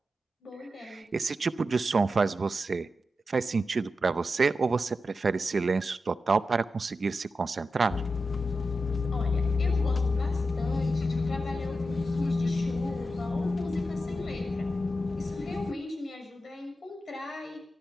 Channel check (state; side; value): normal; both; correlation 0.90